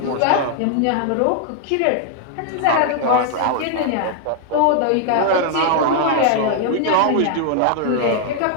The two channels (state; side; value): different; both; correlation 0.00